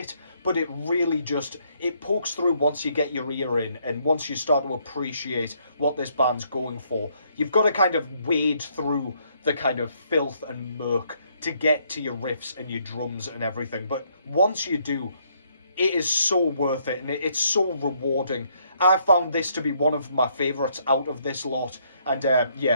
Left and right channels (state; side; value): inverted; both; correlation -0.70